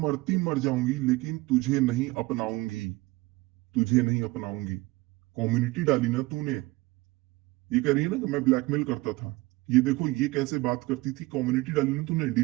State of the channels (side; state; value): left; quieter; 21.3 dB